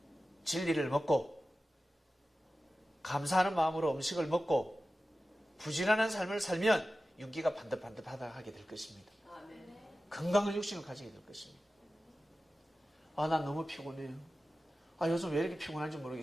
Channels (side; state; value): both; normal; correlation 0.94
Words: 진리를 먹고 감사하는 마음으로 음식을 먹고 부지런한 삶을 살면 윤기가 반듯반듯하게 될 것입니다. 건강한 육신을 가지게 될 것입니다. 아, 난 너무 피곤해요. 아, 요즘 왜 이렇게 피곤한지